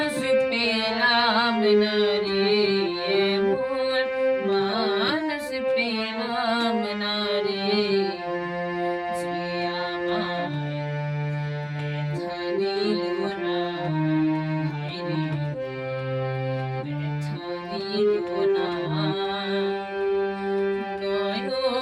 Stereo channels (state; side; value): identical; both; correlation 1.00